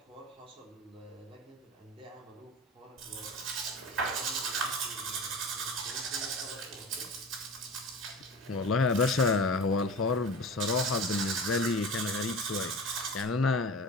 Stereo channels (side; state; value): both; normal; correlation 0.34